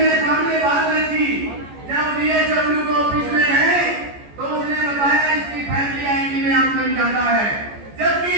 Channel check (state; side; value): late; left; 14 ms